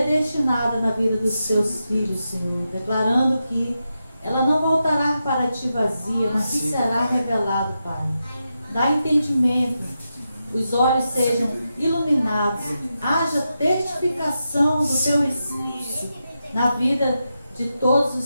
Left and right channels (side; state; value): both; inverted; correlation -0.88